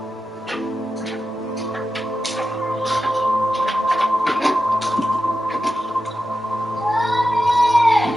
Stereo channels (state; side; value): normal; both; correlation 0.91